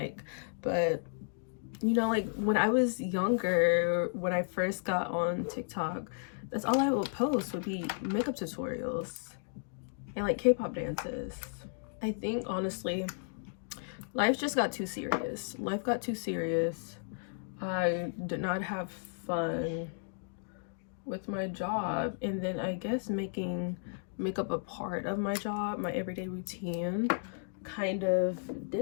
But you know, like when I was younger, when I first got on TikTok, that's all I would post would be makeup tutorials and like K-pop dances. I think honestly, life just got too serious. Life got too serious. I did not have fun with my job, and then I guess making makeup a part of my job, my everyday routine, kind of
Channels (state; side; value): silent; right; digital silence